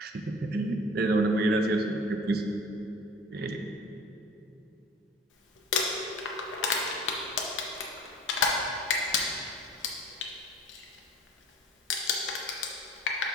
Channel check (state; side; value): normal; both; correlation 0.43